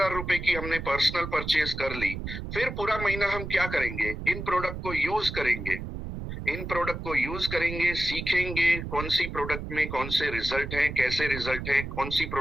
रुपए की हमने पर्सनल परचेज कर ली। फिर पूरा महीना हम क्या करेंगे? इन प्रोडक्ट को यूज करेंगे, इन प्रोडक्ट को यूज करेंगे, सीखेंगे कौन सी प्रोडक्ट में कौन से रिजल्ट हैं, कैसे रिजल्ट हैं, कौन सी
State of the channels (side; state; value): right; noise; rumble, 7 dB below the sound